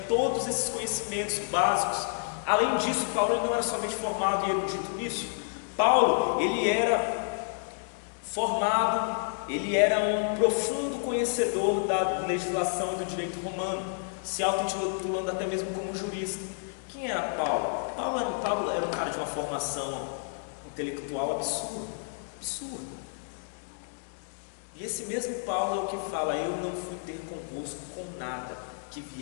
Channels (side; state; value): right; silent; digital silence